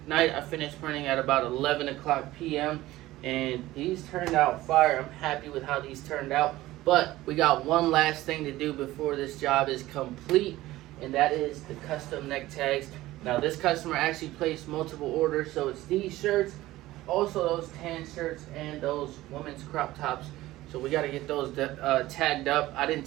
night, I finished printing at about 11 o'clock p.m. And these turned out fire. I'm happy with how these turned out. But we got one last thing to do before this job is complete, and that is the custom neck tags. Now, this customer actually placed multiple orders, so it's these shirts, also those tan shirts, and those women's crop tops. So we got to get those tagged up. I didn't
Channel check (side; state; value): left; quieter; 16.8 dB